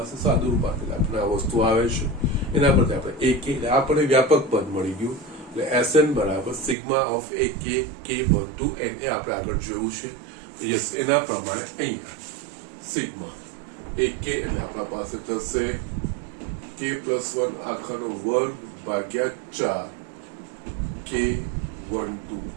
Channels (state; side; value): drops out; left; at 6.8 s